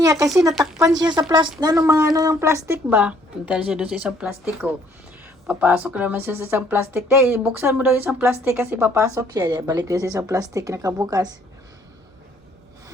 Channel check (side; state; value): both; normal; correlation 0.62